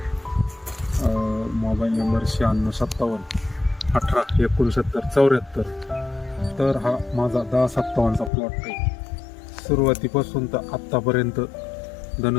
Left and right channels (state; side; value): drops out; right; at 8.3 s